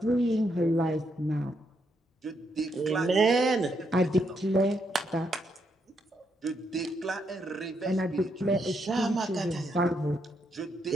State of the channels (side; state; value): both; normal; correlation 0.78